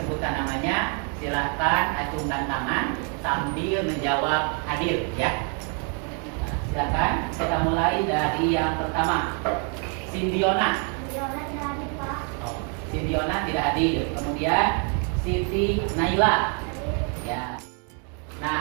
namanya silakan acungkan tangan sambil menjawab hadir ya. Silakan, kita mulai dari yang pertama. Sindiona. Sindiona tidak hadir, Pak. Oh, Sindiona tidak hadir. Kemudian Siti Naila. Ya.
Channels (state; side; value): quieter; left; 39.1 dB